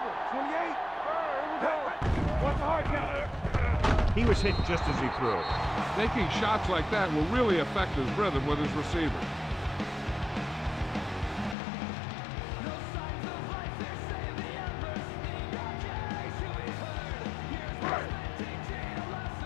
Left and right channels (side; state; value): right; drops out; at 11.6 s